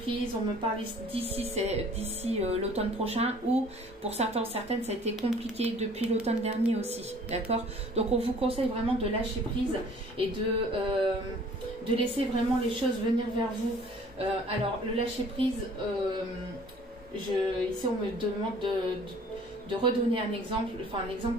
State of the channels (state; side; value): normal; both; correlation 0.53